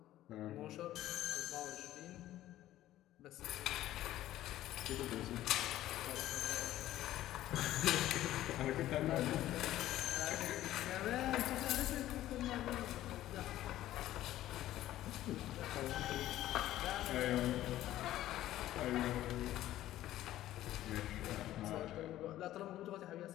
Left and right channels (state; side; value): quieter; right; 14.0 dB